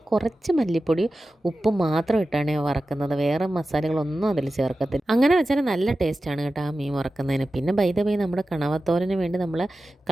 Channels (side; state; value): both; normal; correlation 0.94